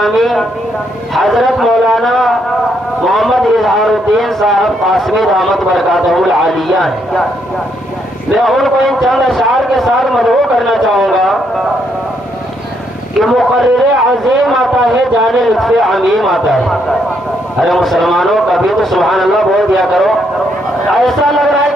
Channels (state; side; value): normal; both; correlation 0.74